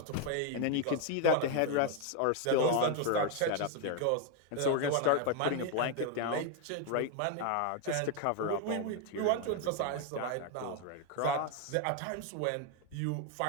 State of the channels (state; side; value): different; both; correlation 0.01